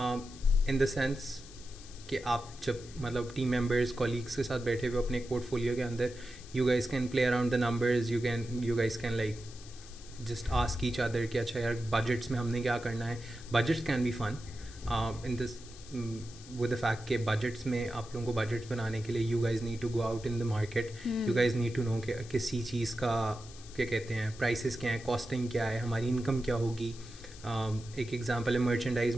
in the sense कि आप जब मतलब team members colleagues के साथ बैठे हुए अपने एक पोर्टफोलियो के अंदर, you guys can play around the numbers. You guys can like just ask each other कि अच्छा यार budgets में हमने क्या करना है. Budgets can be fun in this with the fact कि budgets में आप लोगों को budgets बनाने के लिए you guys need to go out in the market. You guys need to know कि किसी चीज़ का क्या कहते हैं prices क्या है, costing क्या है, हमारी income क्या होगी. एक एग्जांपल है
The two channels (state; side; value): noise; left; hiss, 18 dB below the sound